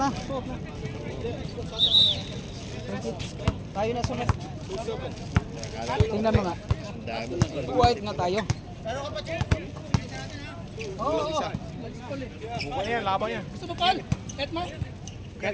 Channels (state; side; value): identical; both; correlation 1.00